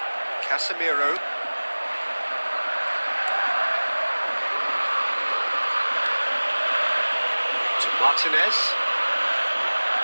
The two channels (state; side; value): inverted; both; correlation -1.00